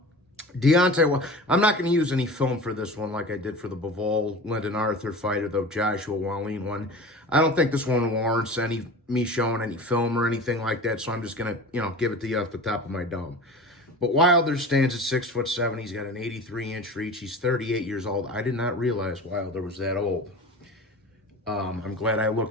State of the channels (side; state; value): both; normal; correlation 0.35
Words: well, I'm not going to use any film for this one like I did for the Bivol Lyndon Arthur fight or the Joshua Wallin one. I don't think this one warrants me showing any film or anything like that, so I'm just going to, give it to you off the top of my dome. But Wilder stands at 6'7". He's got an 83-inch reach. He's 38 years old. I did not realize Wilder was that old. I'm glad I